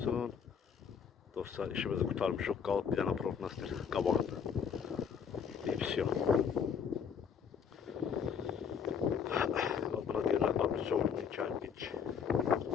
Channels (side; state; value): right; quieter; 7.2 dB